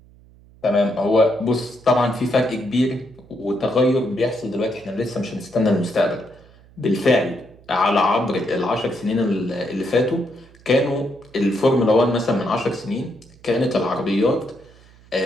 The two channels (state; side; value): noise; right; hum, 26 dB below the sound